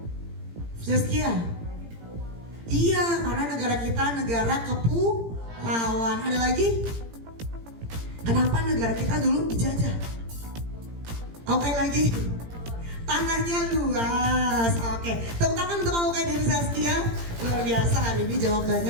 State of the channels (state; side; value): late; left; 17 ms